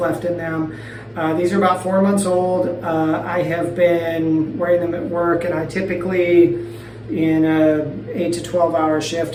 in them. These are about 4 months old. I have been wearing them at work, and I typically, in a 8 to 12 hour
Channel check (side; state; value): both; identical; correlation 1.00